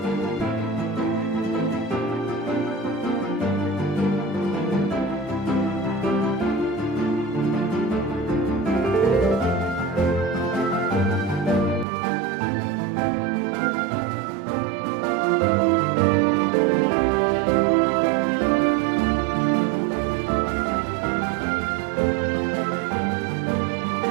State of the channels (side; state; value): left; drops out; at 11.9 s